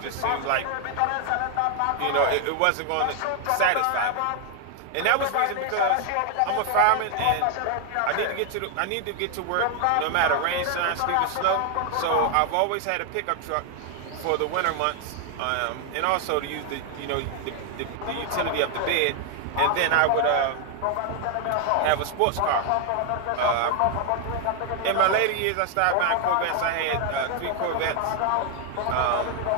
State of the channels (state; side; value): different; both; correlation 0.00